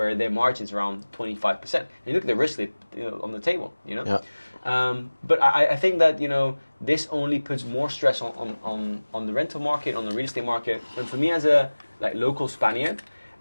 their margin's around 25%. And you look at the risk on the table, Yeah. But I think that this only puts more stress on the rental market, on the real estate market. And for me, as a local Spaniard,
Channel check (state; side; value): inverted; both; correlation -1.00